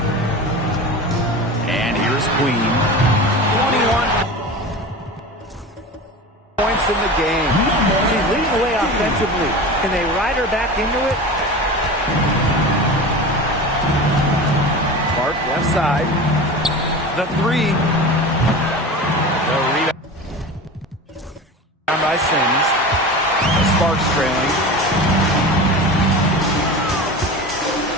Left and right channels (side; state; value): both; normal; correlation 0.31